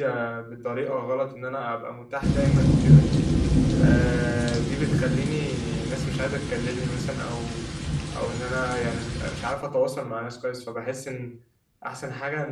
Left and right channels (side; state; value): both; identical; correlation 1.00